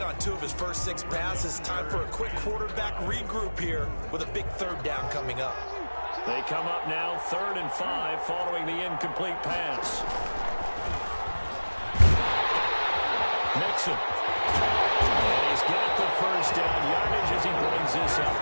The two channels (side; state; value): both; inverted; correlation -1.00